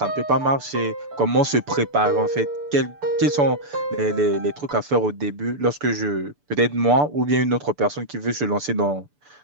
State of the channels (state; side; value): late; left; 6.9 ms